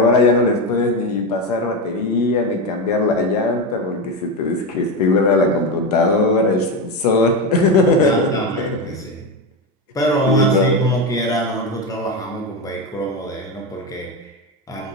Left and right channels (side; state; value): both; normal; correlation 0.14